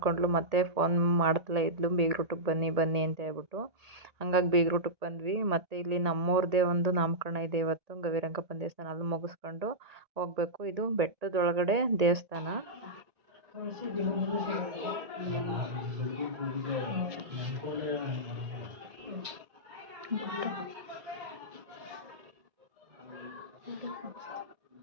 ಮತ್ತೆ ಫೋನ್ ಮಾಡ್ತಲೇ ಇದ್ಲು, ಬೇಗರೂಟಕ್ಕೆ ಬನ್ನಿ ಬನ್ನಿ ಅಂತ ಹೇಳ್ಬಿಟ್ಟು. ಹಂಗಾಗಿ ಬೇಗರೂಟಕ್ಕೆ ಬಂದ್ವಿ. ಮತ್ತು ಇಲ್ಲಿ ನಮ್ಮವ್ರದ್ದೇ ಒಂದು ನಾಮಕರಣ ಇದೆ ಇವತ್ತು, ಗವಿರಂಗಪ್ಪನ ದೇವಸ್ಥಾನ. ಅಲ್ಲಿ ಮುಗಿಸ್ಕೊಂಡು ಹೋಗಬೇಕು. ಇದು ಬೆಟ್ಟದೊಳಗಡೆ ದೇವಸ್ಥಾನ.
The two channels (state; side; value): late; left; 1.9 ms